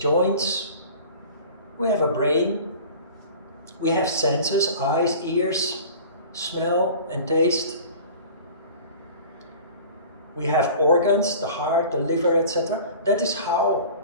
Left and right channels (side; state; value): both; inverted; correlation -0.42